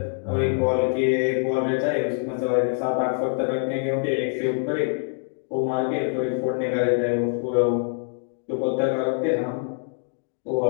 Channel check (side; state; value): right; silent; digital silence